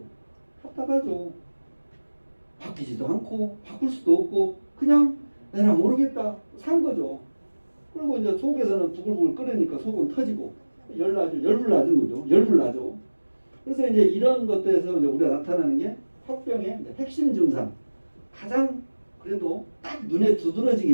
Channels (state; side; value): inverted; both; correlation -1.00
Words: 답답하죠. 바뀌지도 않고 바꿀 수도 없고 그냥 내가 모르겠다 산 거죠. 그리고 이제 속에서는 부글부글 끓으니까 속은 터지고 열불 나는 거죠. 열불 나죠. 그래서 이제 이런 것들에서 이제 우리가 나타나는 게 화병의 핵심 증상, 가장 그래도 딱 눈에